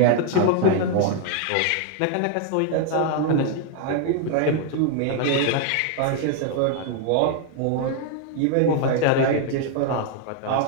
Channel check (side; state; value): both; different; correlation 0.00